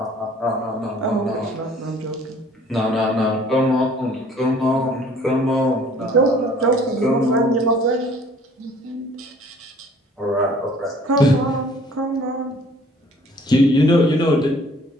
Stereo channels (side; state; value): both; normal; correlation 0.54